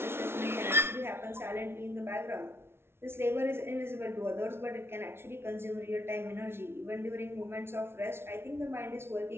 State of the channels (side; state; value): left; late; 0.12 ms